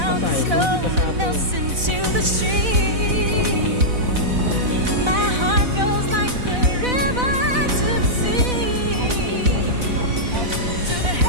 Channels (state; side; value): late; left; 4.0 ms